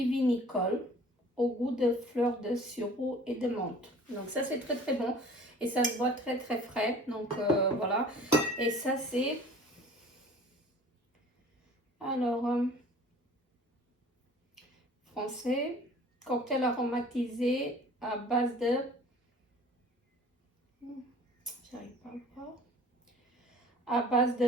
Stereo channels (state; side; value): normal; both; correlation 0.47